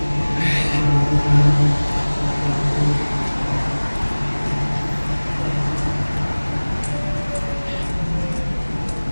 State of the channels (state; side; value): inverted; both; correlation -1.00